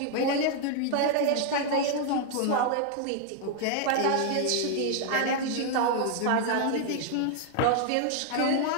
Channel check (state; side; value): different; both; correlation 0.00